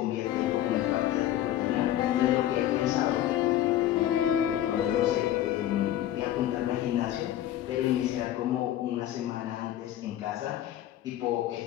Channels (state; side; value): quieter; right; 12.7 dB